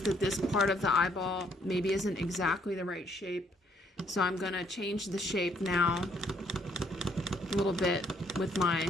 that this part of the eyeball maybe isn't exactly the right shape, so I'm going to change the shape now a little bit with my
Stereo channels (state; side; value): normal; both; correlation 0.68